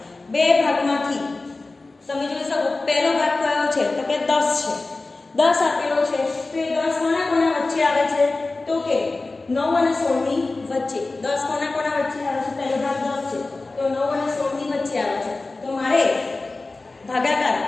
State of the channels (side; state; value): right; quieter; 3.4 dB